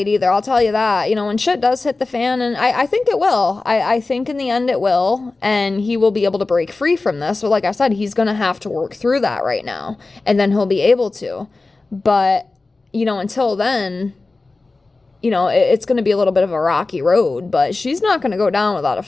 either, I'll tell you that. When shit does hit the fan, and I think it will. I think in the end it will, and he will be able to break free from this. But like I said, he's gonna have to work through that right now, and then he'll be able to. But, until then, it's gonna be a little bit of a rocky road, but she's not gonna go down without a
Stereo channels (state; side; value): quieter; right; 3.5 dB